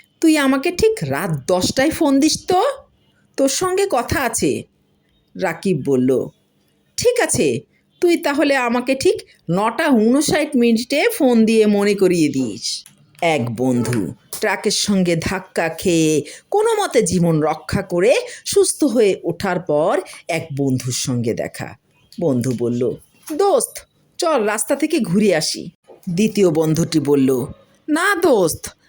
তুই আমাকে ঠিক রাত 10টায় ফোন দিস তো, তোর সঙ্গে কথা আছে। রাকিব বলল, ঠিক আছে, তুই তাহলে আমাকে ঠিক 9টা 59 মিনিটে ফোন দিয়ে মনে করিয়ে দিস। এক বন্ধু ট্রাকের সঙ্গে ধাক্কা খেয়ে কোনো মতে জীবন রক্ষা করে সুস্থ হয়ে ওঠার পর এক বন্ধুর সঙ্গে দেখা। বন্ধু বলল, দোস্ত, চল রাস্তা থেকে ঘুরে আসি। দ্বিতীয় বন্ধুটি বলল, না দোস্ত,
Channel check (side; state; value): both; identical; correlation 1.00